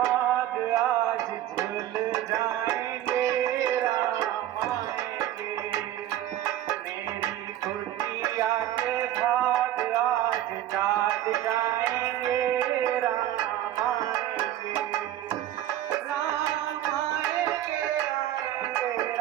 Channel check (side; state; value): left; quieter; 12.6 dB